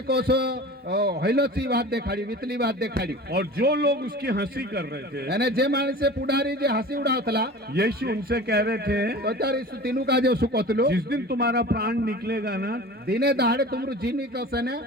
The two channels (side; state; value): both; normal; correlation 0.38